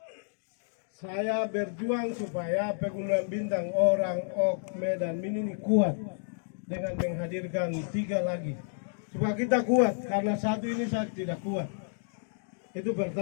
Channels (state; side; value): silent; right; digital silence